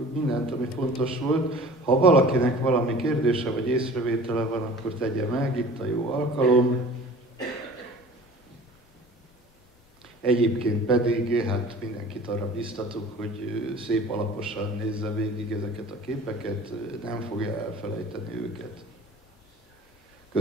mindent, ami fontos volt. Ha valakinek valami kérdése vagy észrevétele van, akkor tegye meg, itt a jó alkalom. Egyébként pedig hát mindenkit arra biztatok, hogy szép alaposan nézze végig ezeket a képeket, nem fogja elfelejteni őket.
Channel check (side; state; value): both; normal; correlation 0.44